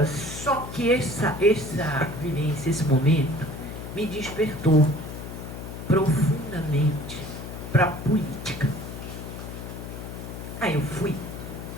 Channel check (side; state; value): left; noise; hum, 9 dB below the sound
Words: só que essa vivência, esse momento, me despertou profundamente para a política. Aí eu fui